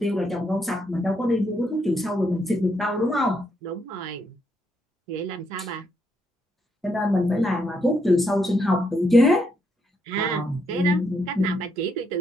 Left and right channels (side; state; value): both; normal; correlation 0.77